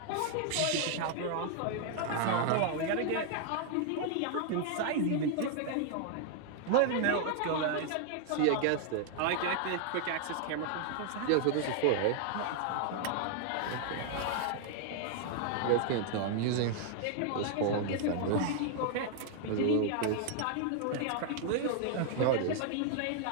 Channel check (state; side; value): different; both; correlation 0.00